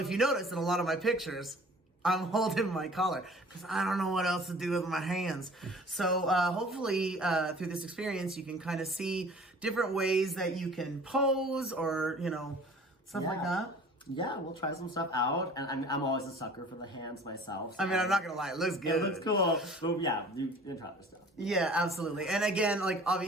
you notice in a lot of my pictures, I'm holding my collar because I don't know what else to do with my hands. So hopefully through this experience, you can kind of see different ways that you can pose or, you know, stuff like that. Yeah, we'll try some stuff out, and I'm always a sucker for the hands myself. So I mean, I'm not gonna lie, it looks good. It looks cool. But yeah, you can try this stuff. Yeah, absolutely. And again, like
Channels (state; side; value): normal; both; correlation 0.47